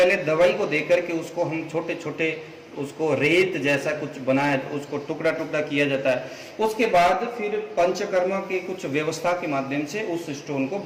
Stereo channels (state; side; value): identical; both; correlation 1.00